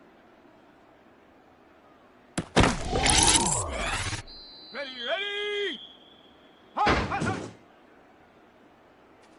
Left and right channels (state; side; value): identical; both; correlation 1.00